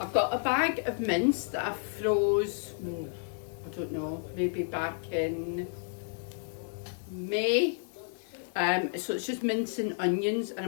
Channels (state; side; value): silent; right; digital silence